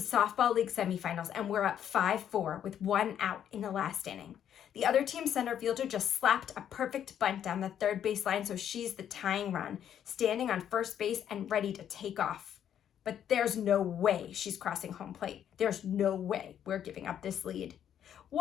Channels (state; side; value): quieter; right; 9.7 dB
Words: league semifinals, and we're up 5-4 with one out in the last inning. The other team's center fielder just slapped a perfect bunt down the third baseline, so she's the tying run, standing on first base and ready to take off. But there's no way she's crossing home plate. There's no way we're giving up this lead.